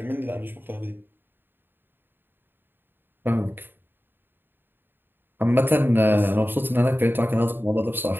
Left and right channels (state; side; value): late; left; 0.097 ms